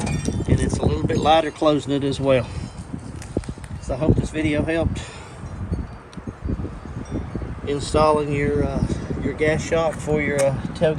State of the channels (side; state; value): both; identical; correlation 1.00